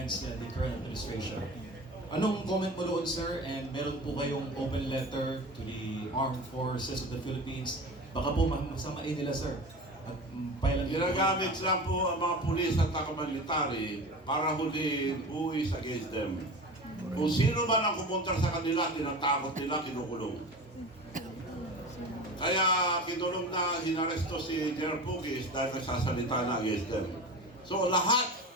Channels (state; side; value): normal; both; correlation 0.33